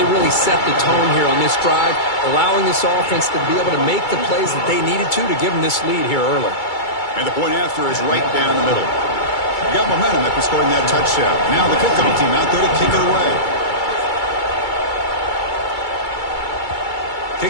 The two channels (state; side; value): late; right; 2.3 ms